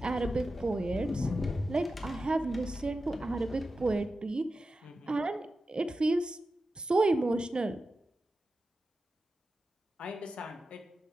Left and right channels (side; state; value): both; normal; correlation 0.92